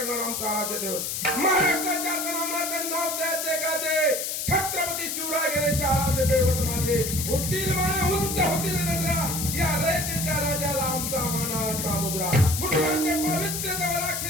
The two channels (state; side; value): noise; left; hiss, 3 dB below the sound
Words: आमचा आराध्य दैवत. महाराष्ट्राच्या तनामला नाव द्यायचे गाजे छत्रपती शिवराय गणेश आराध्य दैवत माझे. होतील माने उंच होतील नजरा या रयतेच्या राजाला आमचा मानाचा मुजरा. मुलांचे पवित्र तव